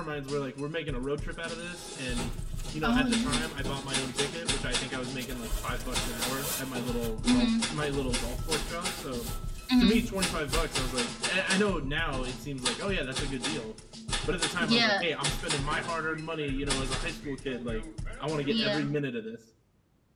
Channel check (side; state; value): both; identical; correlation 1.00